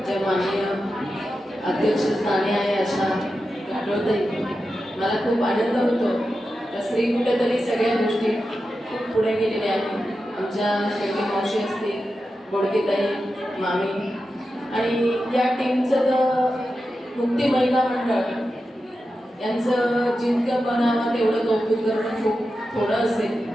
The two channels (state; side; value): normal; both; correlation 0.91